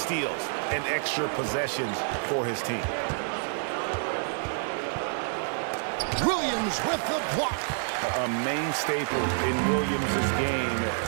and extra possessions for his team. Williams with the block. A main staple in Williams' game,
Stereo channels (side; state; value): left; silent; digital silence